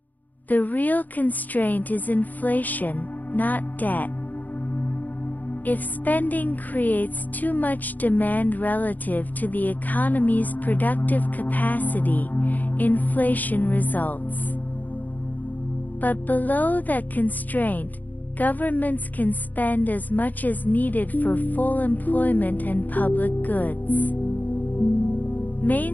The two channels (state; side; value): late; right; 0.082 ms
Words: The real constraint is inflation, not debt. If spending creates too much demand relative to the economy's productive capacity, inflation results. But below that constraint, governments can spend as much as needed for full employment and public goods.